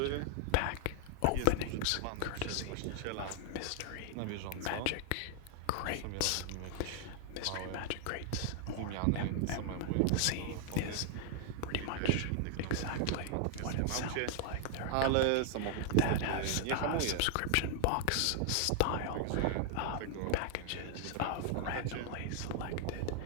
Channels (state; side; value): different; both; correlation 0.00